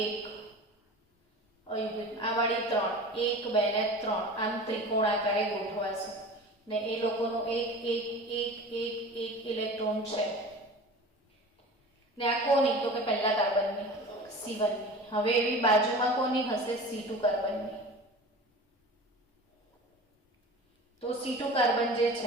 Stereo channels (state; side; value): normal; both; correlation 0.37